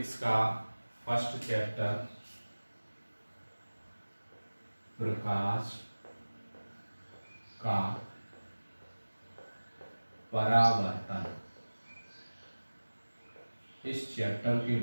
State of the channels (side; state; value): both; inverted; correlation -1.00